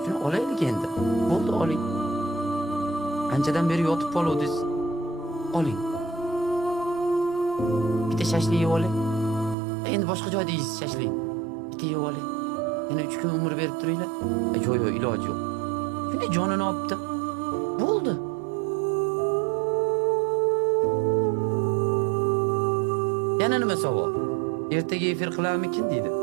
Shuni olaylik endi. Bo'ldi oling. Anchadan beri yotib qoluvdingiz. Oling. Bitta shashlik yeb oling. Endi boshqa joyda yeysiz shashlik. Bitta yeb oling. Yana 3 kun umr berib turinglar. Yo'q, iloji yo'q. Shunday jonini olibdi. Bo'ldi. Yana nima savol? Ertaga efir qilarmikin deydi.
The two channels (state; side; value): drops out; left; at 9.6 s